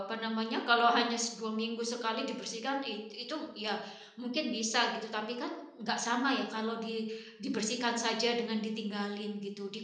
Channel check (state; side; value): identical; both; correlation 1.00